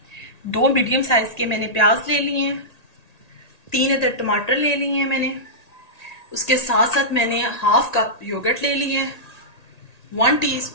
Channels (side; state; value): right; late; 1.8 ms